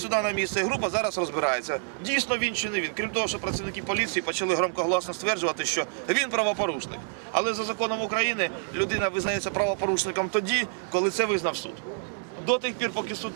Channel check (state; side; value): silent; left; 60 dB below the other